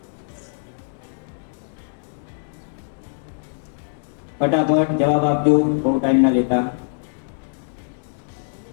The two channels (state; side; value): silent; right; digital silence